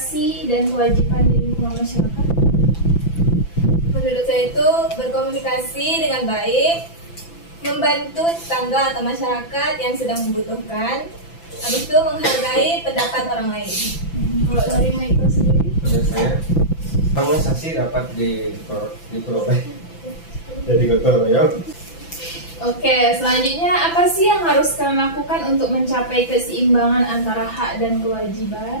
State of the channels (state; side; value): late; right; 6.0 ms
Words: dan kewajiban di lingkungan masyarakat? Menurut saya itu berkomunikasi dengan baik, membantu tetangga atau masyarakat yang sedang membutuhkan, habis itu menghargai pendapat orang lain. Kalau dari Michael sendiri? menurut saya harmonisasi dapat diperoleh jadi gotong royong. Oke, selanjutnya apa sih yang harus kalian lakukan untuk mencapai keseimbangan antara hak dan